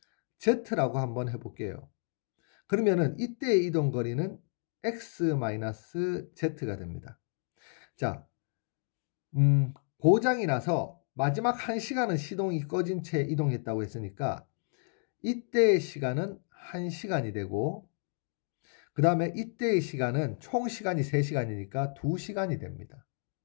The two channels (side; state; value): right; silent; 57 dB below the other